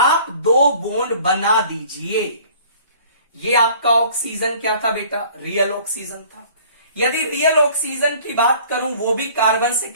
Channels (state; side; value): inverted; both; correlation -0.51